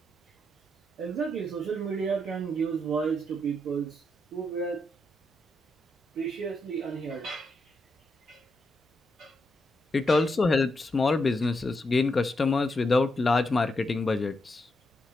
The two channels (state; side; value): normal; both; correlation 0.82